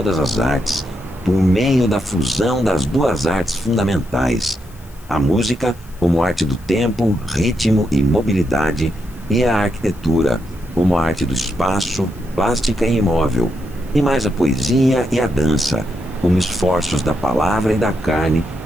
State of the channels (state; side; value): noise; left; hiss, 26 dB below the sound